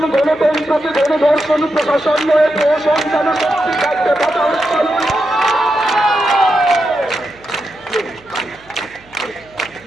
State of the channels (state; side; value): noise; right; hum, 28 dB below the sound